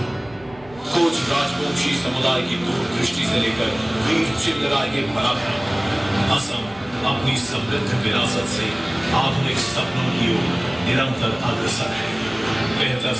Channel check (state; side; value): noise; right; rumble, 23 dB below the sound